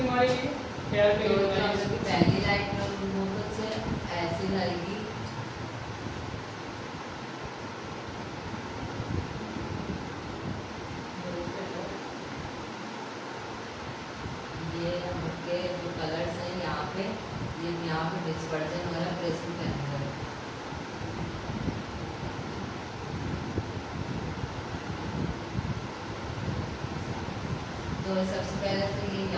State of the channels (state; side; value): identical; both; correlation 1.00